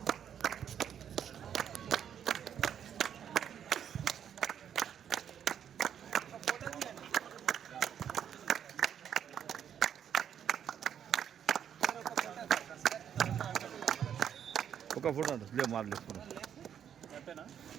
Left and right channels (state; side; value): quieter; left; 8.9 dB